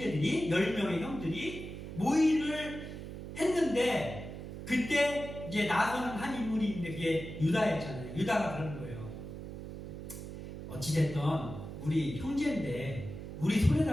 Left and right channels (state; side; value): noise; right; hum, 9 dB below the sound